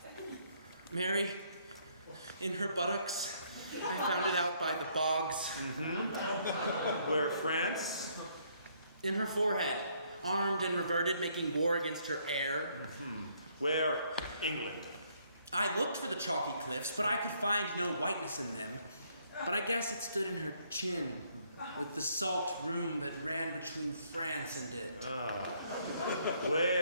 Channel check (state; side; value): inverted; both; correlation -0.68